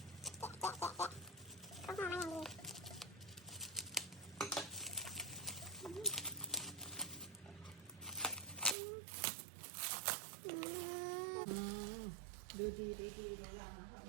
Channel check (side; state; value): left; drops out; at 8.8 s